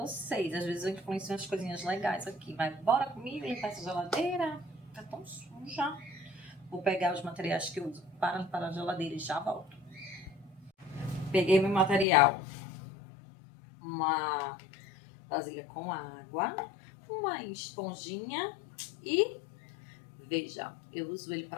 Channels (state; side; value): drops out; right; at 12.1 s